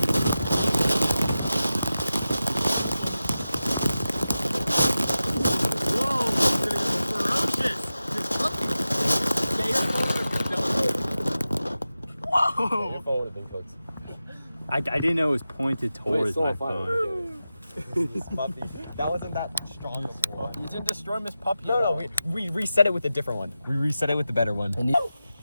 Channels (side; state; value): both; inverted; correlation -0.93